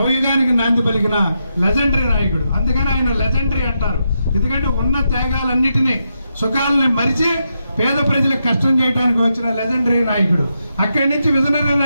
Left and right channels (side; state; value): both; inverted; correlation -0.84